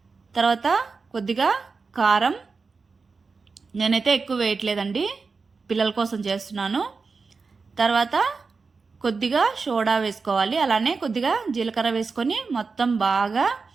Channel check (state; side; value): quieter; left; 4.6 dB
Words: తర్వాత కొద్దిగా కారం. నేనైతే ఎక్కువ వేయట్లేదండి, పిల్లల కోసం చేస్తున్నాను. తర్వాత కొద్దిగా సోడా వేసుకోవాలి. అలానే కొద్దిగా జీలకర్ర వేసుకొని మొత్తం బాగా